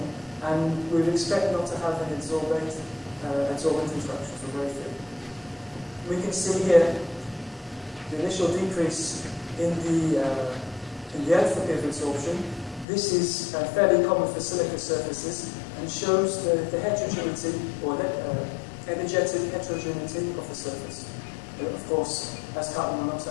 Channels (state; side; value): drops out; right; at 12.9 s